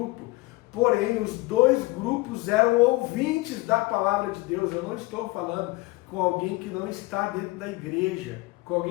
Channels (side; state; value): right; quieter; 22.1 dB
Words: Porém, os dois grupos eram ouvintes da palavra de Deus. Eu não estou falando com alguém que não está dentro da igreja, com